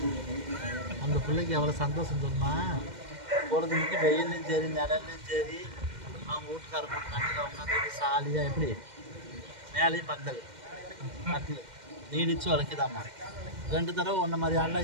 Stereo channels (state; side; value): late; left; 2.1 ms